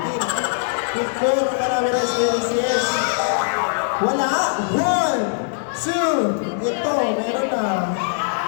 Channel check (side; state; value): right; silent; digital silence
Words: Picture ng Banawi Rice Terraces. Wala! 1, 2, ito, meron na.